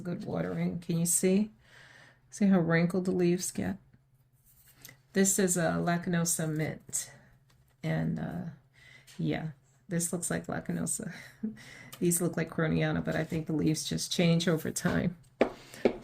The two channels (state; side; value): identical; both; correlation 1.00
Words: good watering. Can you see? See how wrinkled the leaves get? This is a Lechuza mint. And yeah, this looks like Lechuza. These look like Croniana, but I think the leaves just change over time.